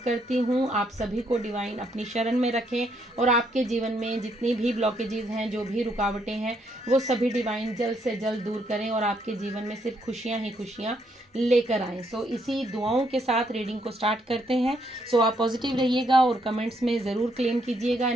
हूँ। आप सभी को डिवाइन अपनी शरण में रखें और आपके जीवन में जितनी भी ब्लॉकेजेस हैं, जो भी रुकावटें हैं, वो सभी डिवाइन जल्द से जल्द दूर करें और आपके जीवन में सिर्फ खुशियाँ ही खुशियाँ लेकर आएँ। सो इसी दुआओं के साथ रीडिंग को स्टार्ट करते हैं। सो आप पॉजिटिव रहिएगा और कमेंट्स में ज़रूर क्लेम कीजिएगा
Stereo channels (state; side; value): normal; both; correlation 0.73